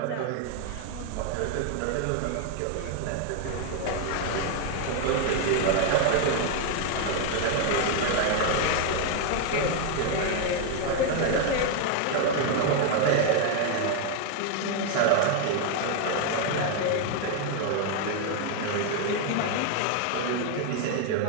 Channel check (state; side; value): different; both; correlation 0.00